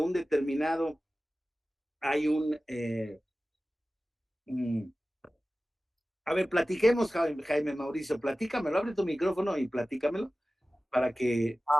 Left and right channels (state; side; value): normal; both; correlation 0.96